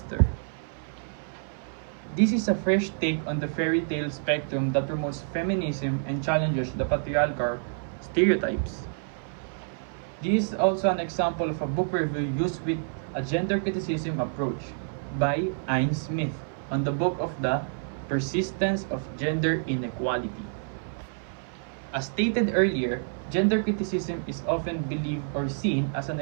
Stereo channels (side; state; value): left; silent; 59 dB below the other